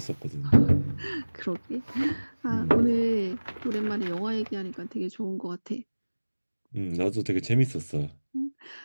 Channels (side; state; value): both; inverted; correlation -1.00